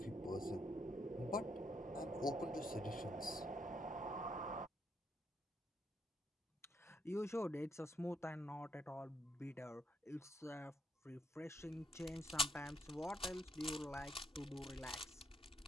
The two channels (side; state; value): both; normal; correlation 0.75